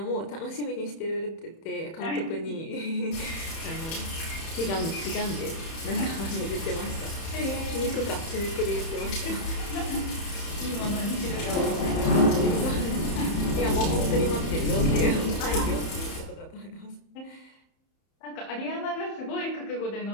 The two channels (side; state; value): right; late; 31 ms